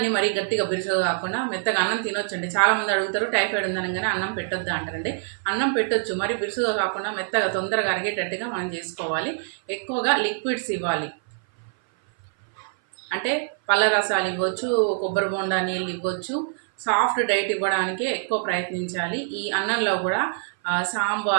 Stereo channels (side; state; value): left; silent; 57 dB below the other